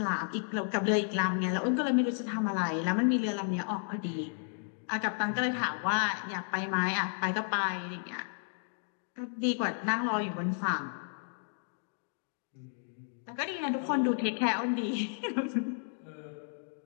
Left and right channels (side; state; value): right; silent; digital silence